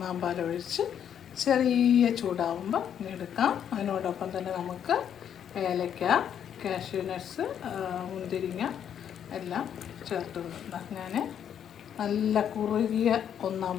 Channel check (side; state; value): right; quieter; 9.0 dB